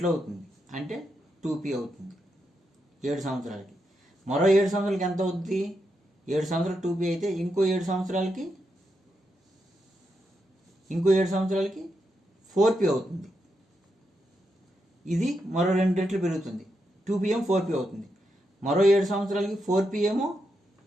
అవుతుంది. అంటే 2P అవుతుంది 7 సంవత్సరాలకి. మరో 7 సంవత్సరాలకి ఎంత అవుతుంది? 7 సంవత్సరాలు 2P అయితే ఇంకో 7 సంవత్సరాలకి 4P అవుతుంది. ఇది మరో 2 రెట్లు పెరుగుతుంది. 2P ఏమో 4P అవుతుంది. మరో 7 సంవత్సరాలకి 4P ఏమో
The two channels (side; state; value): both; normal; correlation 0.84